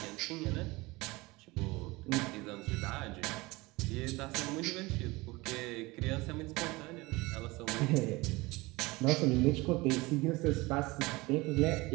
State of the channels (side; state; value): left; quieter; 22.4 dB